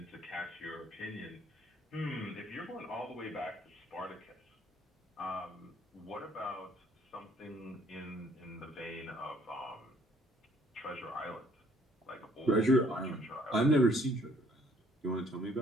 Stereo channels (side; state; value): both; normal; correlation 0.62